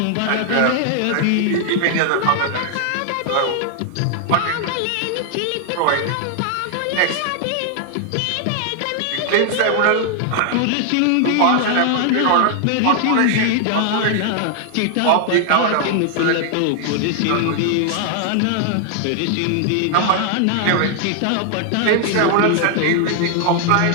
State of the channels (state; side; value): different; both; correlation 0.00